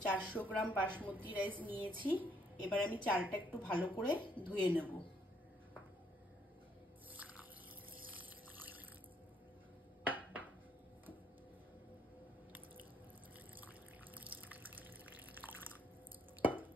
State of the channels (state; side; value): normal; both; correlation 0.69